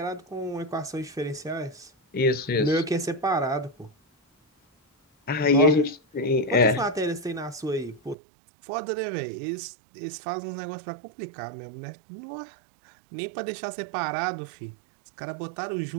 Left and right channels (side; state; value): left; drops out; at 8.2 s